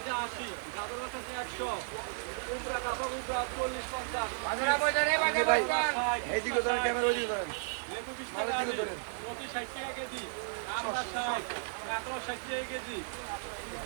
80, গাজর বেচা আছে 100, কুমড়া কাঁচা কুমড়া 40-50, ভাই এইদিকে ধরেন, ক্যামেরা ওইদিকে ধরেন, লেবু 20 মালের টাকা দিকে কেজি, ধরেন। মতি 60 টাকা কেজি, আমরা 60, কাঁকড়া 60 টাকা কেজি,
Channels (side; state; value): left; silent; digital silence